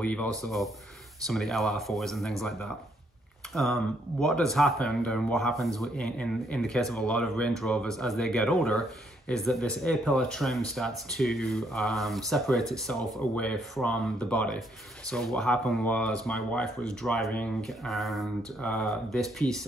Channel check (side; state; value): both; normal; correlation 0.71